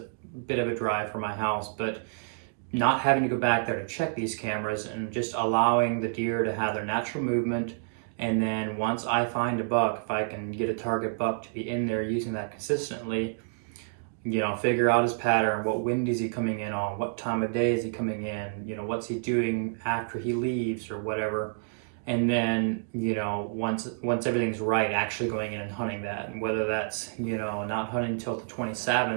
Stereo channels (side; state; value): left; silent; digital silence